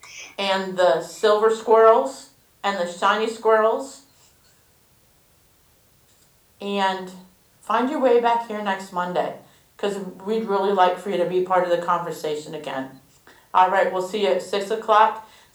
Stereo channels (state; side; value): identical; both; correlation 1.00